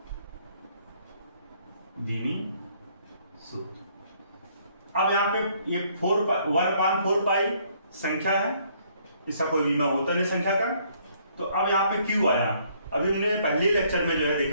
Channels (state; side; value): inverted; both; correlation -0.65